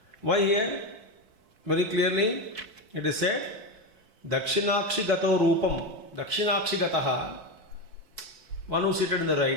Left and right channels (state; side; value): late; left; 4.5 ms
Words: Why here? Very clearly it is said, Dakshinakshi gato rupam, Dakshinakshi gataha, one who seated in the